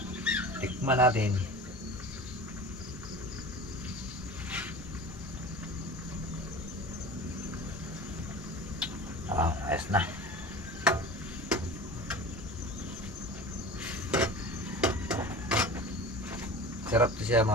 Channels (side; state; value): both; normal; correlation 0.36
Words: Tikman natin. Ayos na. Sarap to siya